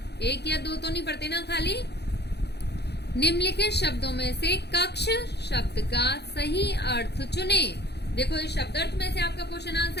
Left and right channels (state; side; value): late; right; 0.48 ms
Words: 1 या 2 तो नहीं पढ़ते ना खाली। निम्नलिखित शब्दों में से कक्ष शब्द का सही अर्थ चुने। देखो इस शब्दार्थ में से आपका क्वेश्चन